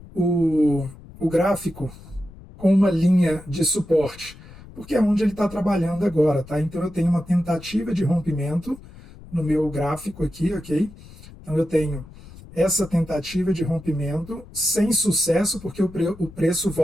o gráfico com uma linha de suporte? Porque é onde ele está trabalhando agora, tá? Então eu tenho uma tentativa de rompimento no meu gráfico aqui, ok? Então eu tenho essa tentativa de rompimento sem sucesso, porque o preço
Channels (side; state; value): left; noise; rumble, 19 dB below the sound